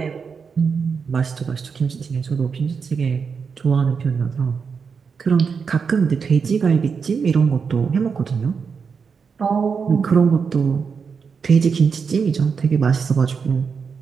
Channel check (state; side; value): quieter; left; 5.8 dB